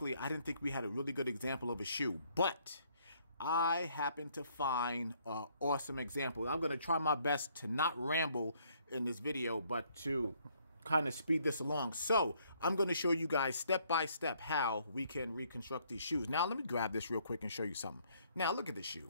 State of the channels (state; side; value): inverted; both; correlation -0.67